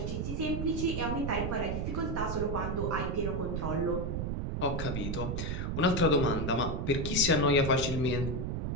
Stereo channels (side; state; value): right; noise; rumble, 2 dB below the sound